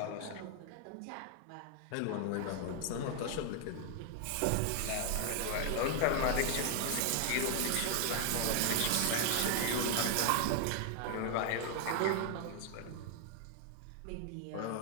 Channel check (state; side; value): different; both; correlation 0.00